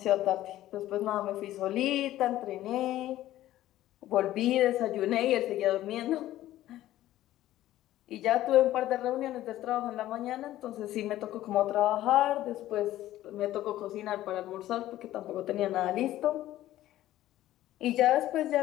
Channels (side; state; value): right; quieter; 14.3 dB